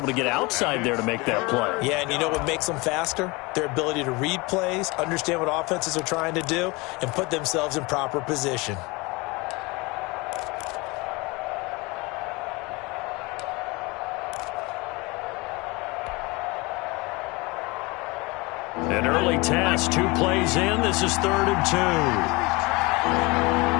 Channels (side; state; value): right; quieter; 25.1 dB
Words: to get outside there to make that play. Yeah, and you know what makes them faster? Their ability to read plays, understand what offenses are trying to do, and put themselves in proper position. An early task, 2 plays in. This is 3rd and 2.